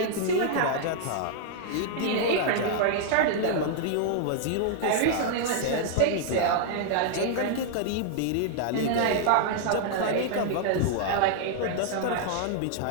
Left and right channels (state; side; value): different; both; correlation -0.01